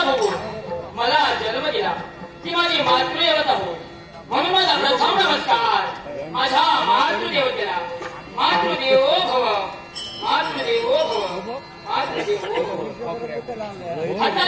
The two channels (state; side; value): identical; both; correlation 1.00